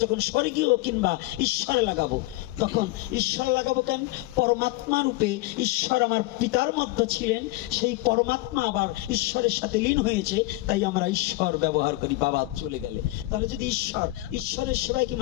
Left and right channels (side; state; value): right; quieter; 19.4 dB